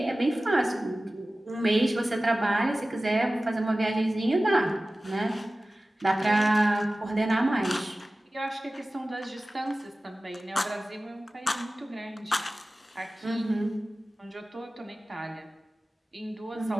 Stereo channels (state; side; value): normal; both; correlation 0.96